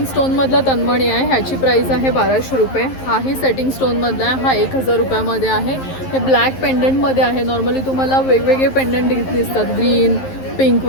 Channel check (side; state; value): right; late; 11 ms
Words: स्टोनमधला तन्मणी आहे. ह्याची प्राईस आहे 1200 रुपये. हाही सेटिंग स्टोनमधला आहे. हा 1000 रुपयामध्ये आहे. हे ब्लॅक पेंडंटमध्ये आहे. नॉर्मली तुम्हाला वेगवेगळे पेंडंट दिसतात, ग्रीन, पिंक